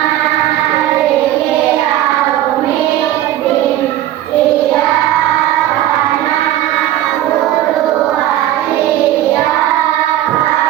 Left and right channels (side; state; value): left; quieter; 13.2 dB